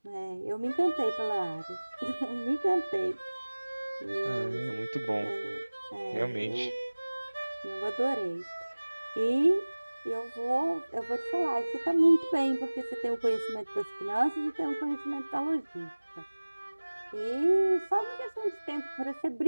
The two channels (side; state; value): both; inverted; correlation -1.00